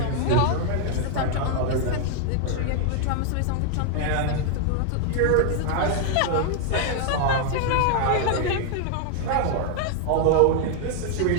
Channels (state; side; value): different; both; correlation 0.00